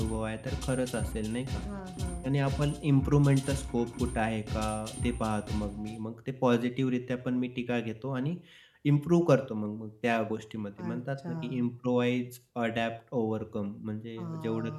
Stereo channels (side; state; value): both; identical; correlation 1.00